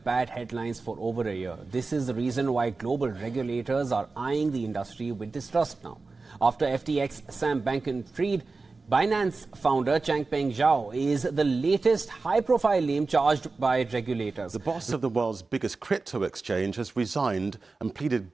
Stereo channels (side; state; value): left; quieter; 3.9 dB